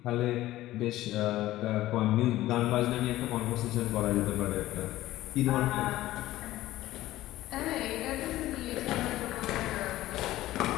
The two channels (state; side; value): quieter; right; 15.7 dB